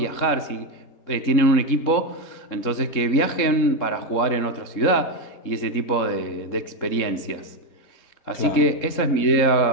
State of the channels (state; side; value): late; right; 3.7 ms